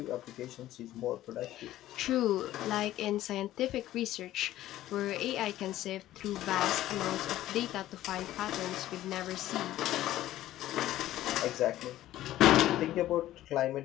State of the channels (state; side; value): quieter; right; 14.2 dB